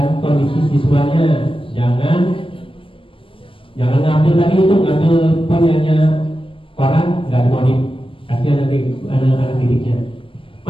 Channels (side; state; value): right; late; 0.25 ms